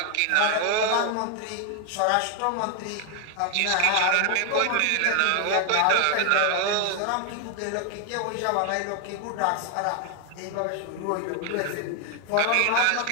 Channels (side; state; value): both; different; correlation 0.00